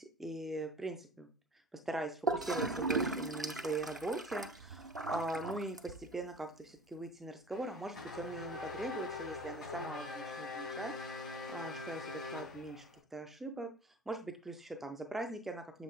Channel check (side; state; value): both; normal; correlation 0.41